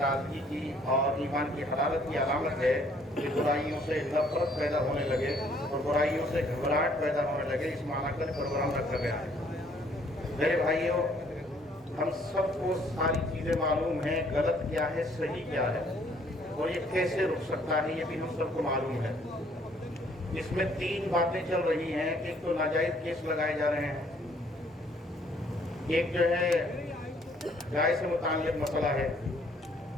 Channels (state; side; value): normal; both; correlation 0.62